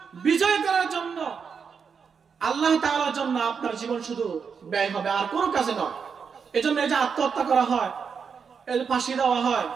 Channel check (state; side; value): quieter; left; 6.2 dB